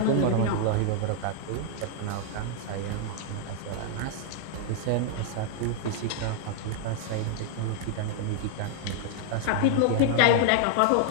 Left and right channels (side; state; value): both; different; correlation -0.01